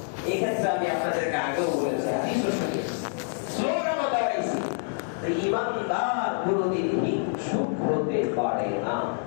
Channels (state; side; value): silent; right; 60 dB below the other